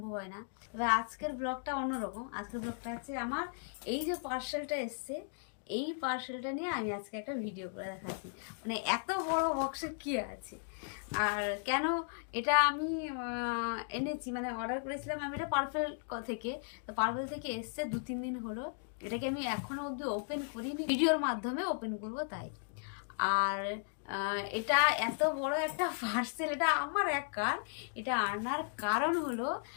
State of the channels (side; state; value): right; silent; digital silence